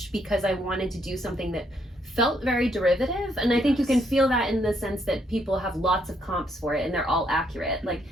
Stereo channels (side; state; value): both; normal; correlation 0.73